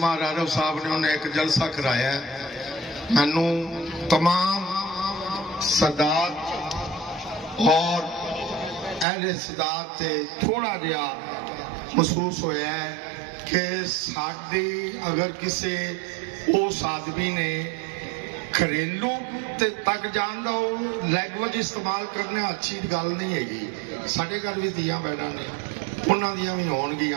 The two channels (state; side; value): drops out; left; at 9.1 s